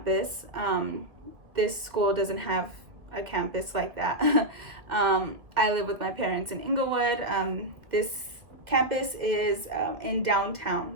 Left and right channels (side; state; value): left; late; 1.8 ms